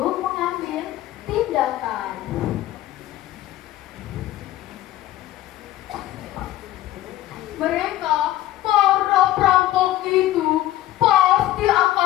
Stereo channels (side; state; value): right; quieter; 14.5 dB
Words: mengambil tindakan. Mereka, para perampok itu, pasti